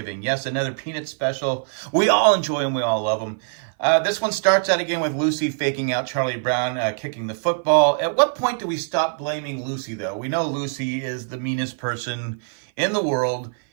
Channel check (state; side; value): silent; left; 56 dB below the other